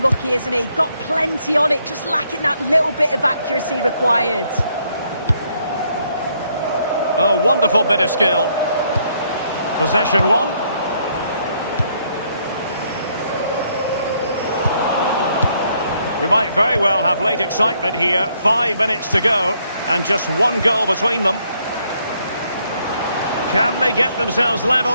isn't he? Got plenty on it, just lacking that little bit of accuracy required. Oh, wonderful bit of skill. Possession one. We might very well have late excitement here. 5 minutes to go and just one goal between them. Can they get themselves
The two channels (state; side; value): inverted; both; correlation -0.71